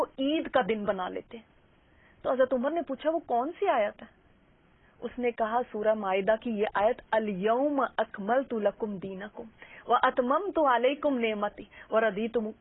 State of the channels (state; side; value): identical; both; correlation 1.00